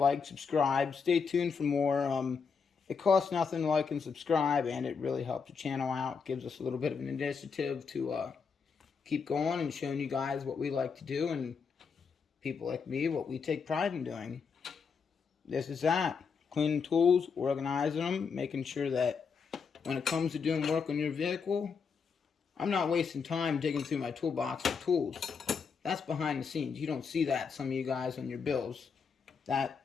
subscribe. Stay tuned for more. It costs nothing to like and subscribe, and it really helps the channel out. Gives us a little bit of an initiative to keep going and showing you guys what we like to do, and people like me, what we take pride in doing. This is that. Cleaning tools, organizing them, making sure that when it comes to doing work on your vehicle, I'm not wasting time digging through my toolbox for tools. That's behind the scenes. You don't see that, some of you guys, on your bills.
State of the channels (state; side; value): quieter; right; 5.7 dB